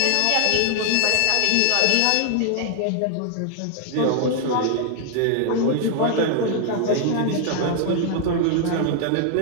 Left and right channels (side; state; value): both; different; correlation -0.01